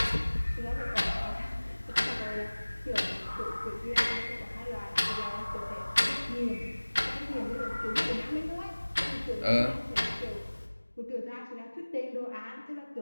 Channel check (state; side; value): inverted; both; correlation -1.00